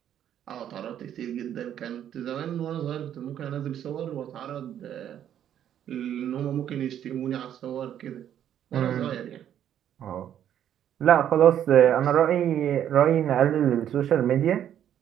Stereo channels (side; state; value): left; quieter; 10.2 dB